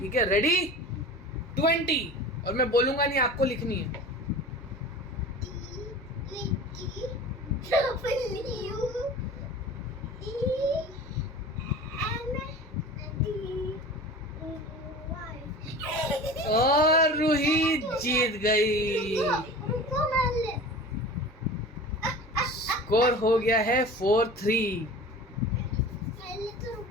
है? रेडी? 20, और मैं बोलूंगा नहीं, आपको लिखनी है। और रूही जीत गई। स्कोर हो गया है 4-3।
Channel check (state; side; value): normal; both; correlation 0.37